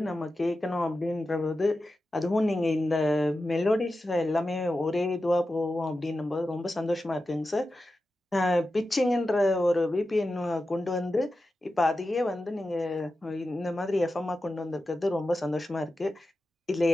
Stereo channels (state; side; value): normal; both; correlation 0.92